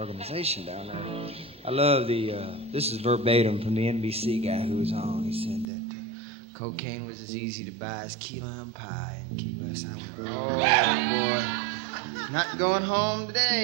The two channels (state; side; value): drops out; left; at 5.7 s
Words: down there. I love this is verbatim from the NBC guy who was on. He said that cocaine was as easy to buy as key lime pie in Key West. Oh, boy. Not going home